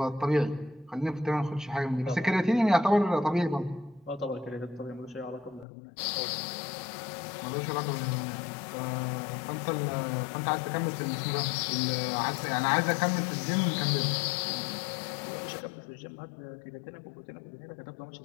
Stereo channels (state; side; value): drops out; right; at 5.7 s